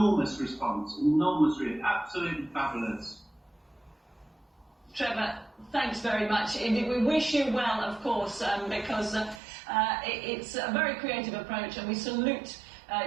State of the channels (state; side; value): drops out; left; at 9.4 s